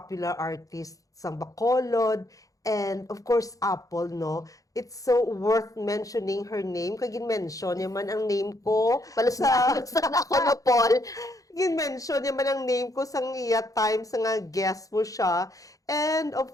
artist, sang Bacolod, and of course, Apple, no? It's so worth mentioning her name. Kaya gin-mention yaman ang name ko Palusna ako no, Paul. gin-mention yaman ang name ko sa iya time sa nga guest mo siya. And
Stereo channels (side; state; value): right; late; 0.17 ms